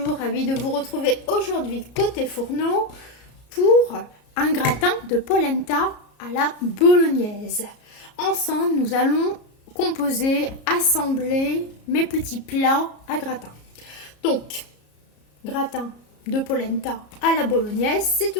ravi de vous retrouver aujourd'hui côté fourneau pour un gratin de polenta à la bolognaise. Ensemble, nous allons composer, assembler mes petits plats à gratin. Donc, gratin de polenta à la bolognaise, c'est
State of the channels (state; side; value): late; right; 33 ms